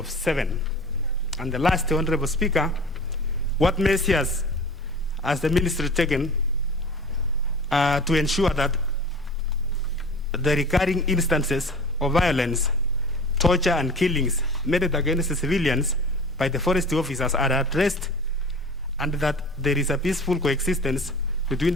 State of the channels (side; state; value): both; normal; correlation 0.39